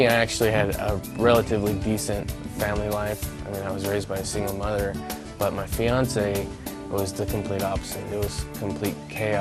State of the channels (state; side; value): identical; both; correlation 1.00